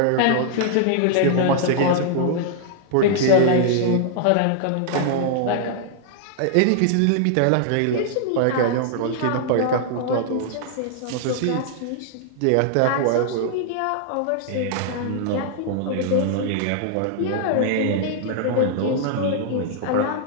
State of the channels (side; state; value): both; different; correlation -0.01